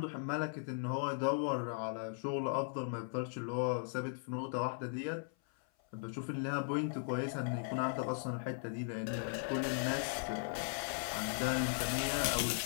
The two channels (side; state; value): right; silent; 52 dB below the other